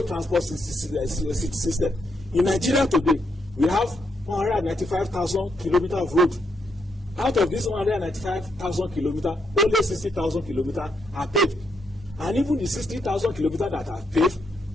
transport system in Nigeria today, we have 195,000 kilometers of road. Out of this 195,000 kilometers, only 60,000 kilometers are paved. And even the 60,000 kilometers that are paved,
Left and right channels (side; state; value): both; normal; correlation 0.78